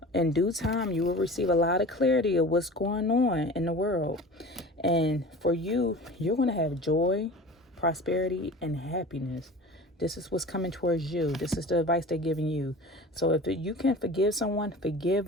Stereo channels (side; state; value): both; normal; correlation 0.38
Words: In due time, you will receive a lot of clarity of what's going on in the world. And for you, you're going to have joy, prosperity, and happiness. This is what's coming towards you. This is the advice they're giving you. So if you can forgive someone, forgive